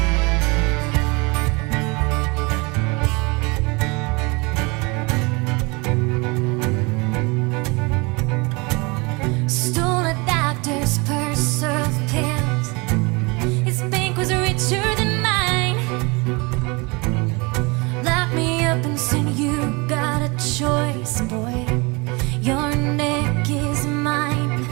Stole a doctor's purse of pills. His bank was richer than mine. Lock me up and said, you got a choice, boy. Your neck is mine.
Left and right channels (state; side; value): quieter; left; 27.7 dB